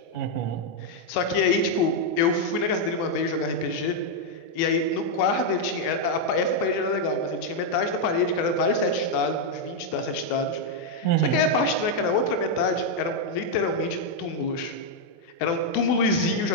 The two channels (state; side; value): late; right; 24 ms